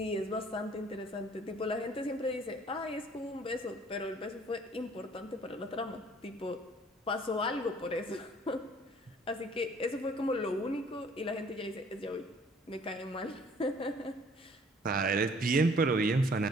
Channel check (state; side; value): normal; both; correlation 0.57